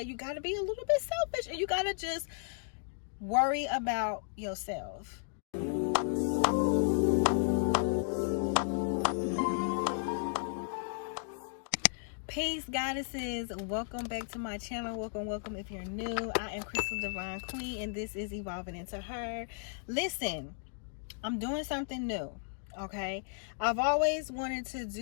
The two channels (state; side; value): silent; right; digital silence